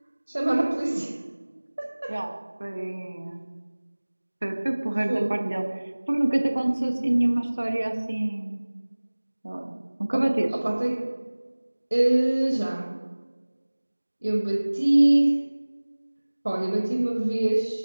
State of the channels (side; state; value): both; inverted; correlation -1.00